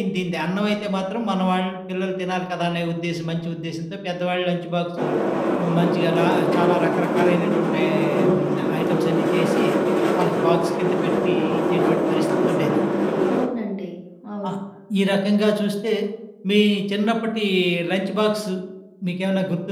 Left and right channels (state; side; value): identical; both; correlation 1.00